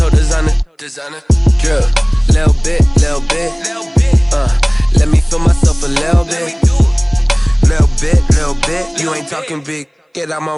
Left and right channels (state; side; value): identical; both; correlation 1.00